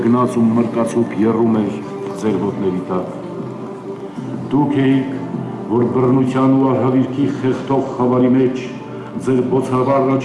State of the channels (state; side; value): identical; both; correlation 1.00